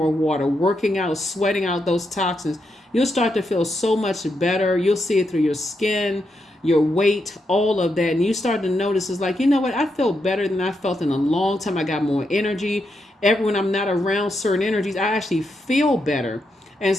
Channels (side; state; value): both; normal; correlation 0.83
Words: water, working out, sweating out those toxins. You'll start to feel so much better. You'll see it through your skin, your weight, all of that. And you start to notice, it's like, you know what? I feel better than I felt in a long time. I got more energy. When I'm not around certain energies, I actually feel better. And